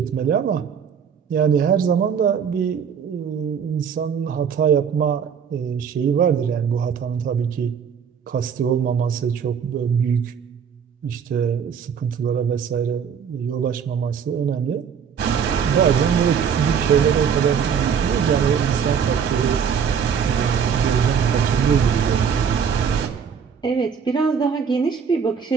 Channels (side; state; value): left; quieter; 7.1 dB